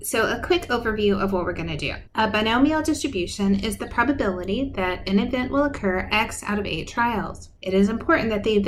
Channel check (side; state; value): both; identical; correlation 1.00